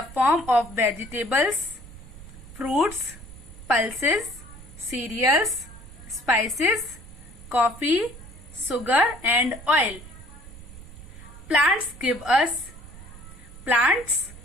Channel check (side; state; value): right; noise; rumble, 16 dB below the sound